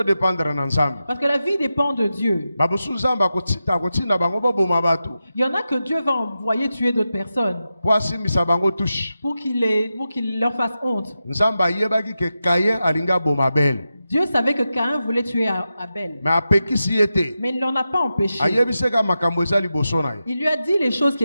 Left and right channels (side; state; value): both; inverted; correlation -0.91